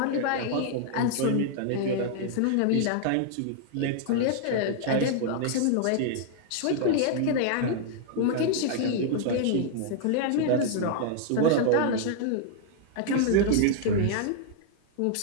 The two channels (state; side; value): different; both; correlation -0.01